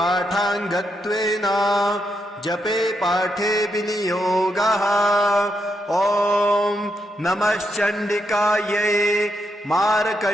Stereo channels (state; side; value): normal; both; correlation 0.81